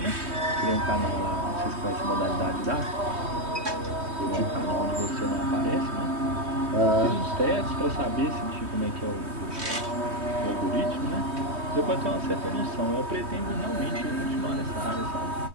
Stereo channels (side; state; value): left; late; 3.2 ms